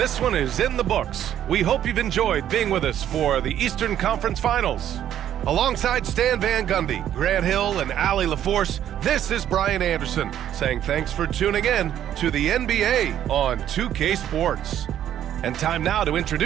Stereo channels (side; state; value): left; quieter; 10.8 dB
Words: one is in the books. We hope you've enjoyed being with us for the Eastern Conference Finals. Alongside Stan Van Gundy, Grant Hill, and Allie LaForce, this is Brian Anderson saying thanks for tuning in to the NBA on 2K Sports. And time now to